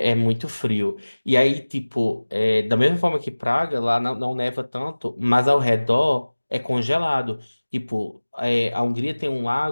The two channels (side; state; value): both; inverted; correlation -1.00